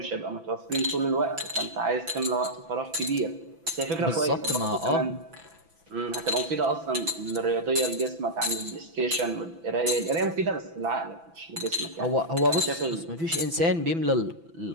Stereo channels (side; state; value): left; late; 6.0 ms